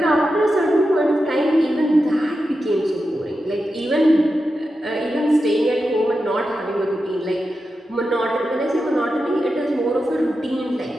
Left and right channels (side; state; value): both; normal; correlation 0.90